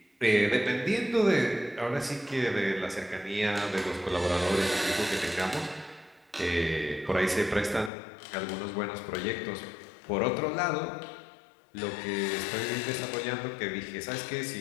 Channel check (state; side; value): drops out; right; at 7.9 s